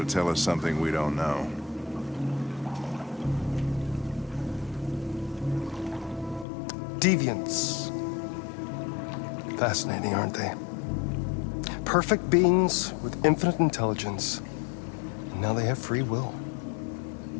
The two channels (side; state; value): right; drops out; at 6.5 s